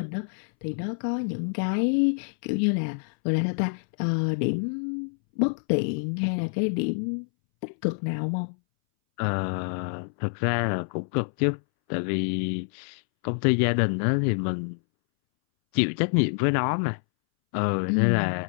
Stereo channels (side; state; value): right; silent; 60 dB below the other